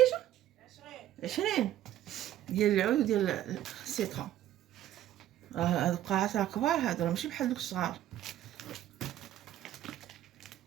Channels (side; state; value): left; quieter; 12.5 dB